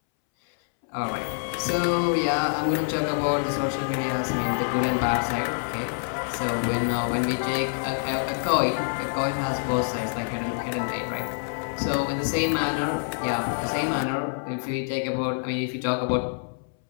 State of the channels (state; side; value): silent; right; 61 dB below the other